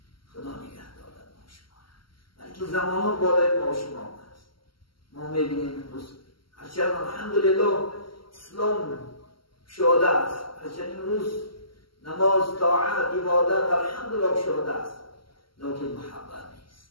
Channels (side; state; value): right; late; 0.74 ms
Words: خدا نگهدار ما شما را. بلکه زمان ها بالای ما شما هست. ما میبینیم امروز هرچند الحمدلله اسلام شاده است، هرچند امروز نماز، طاعت، عبادت الحمدلله شاده است، لیکن محبت